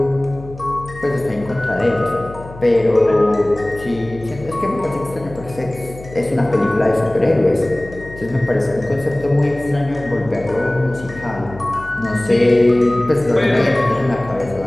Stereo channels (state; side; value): noise; left; hum, 16 dB below the sound